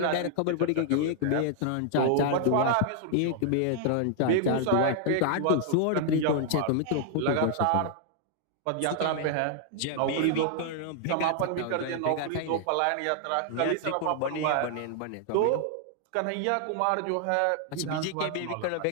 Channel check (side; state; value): both; different; correlation 0.00